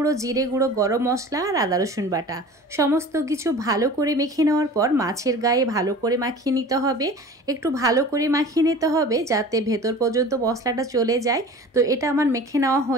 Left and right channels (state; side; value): normal; both; correlation 0.40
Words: জিরে গুঁড়ো, গরম মশলা আর আদা রসুন বাটা। সমস্ত কিছু ভালো করে মেখে নেওয়ার পর মাছের গায়ে ভালো করে মাখিয়ে নিতে হবে। একটু ভালো করে মাখিয়ে নিতে হবে যাতে ভেতর পর্যন্ত মশলাটা চলে যায়। তো এটা আমার মেখে নেওয়া